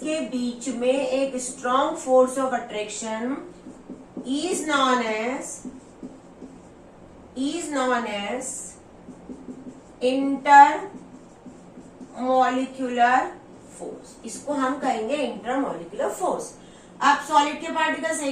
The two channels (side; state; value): both; identical; correlation 1.00